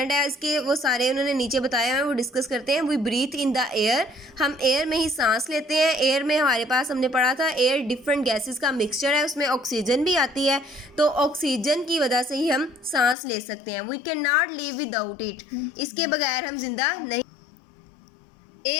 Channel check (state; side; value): drops out; right; at 13.2 s